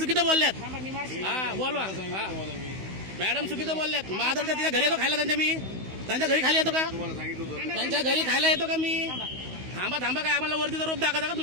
बोलल्यात. थांबा, मी मारशील. हा बोलवा. हा मॅडम चुकीचं बोलल्यात. महादर्शत तिच्या घरी येतो खायला त्यांच्या मी? त्यांच्या घरी खाली येतो का? त्यांच्या घरी खायला येतो का मी? थांबा थांबा, काय आम्हाला वरतीचा रोप दाखवता का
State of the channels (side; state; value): left; late; 16 ms